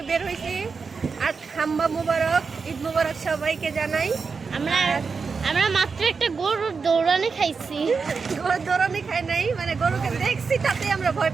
বের হয়েছি। আর হাম্বা মুবারক, ঈদ মুবারক সবাইকে জানাই। আমরা আমরা মাত্র একটা গরুর দৌড়ানি খাইছি। গরু দৌড়ানি খাই নাই, মানে গরুকে দেখছি তাতে আমরা ভয়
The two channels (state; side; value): quieter; left; 5.1 dB